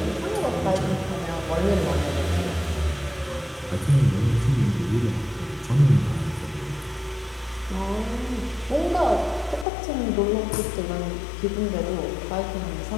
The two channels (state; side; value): drops out; right; at 9.7 s